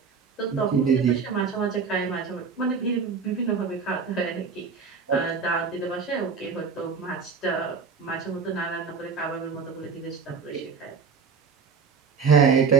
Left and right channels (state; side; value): quieter; left; 5.5 dB